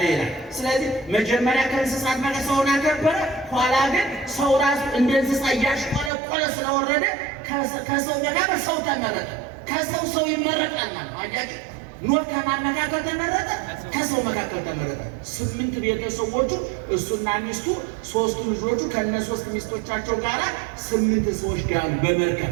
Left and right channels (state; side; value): drops out; left; at 6.1 s